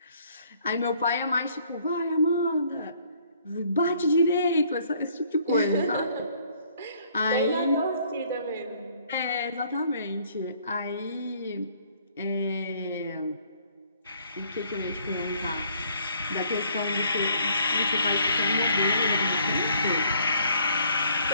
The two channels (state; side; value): inverted; both; correlation -0.63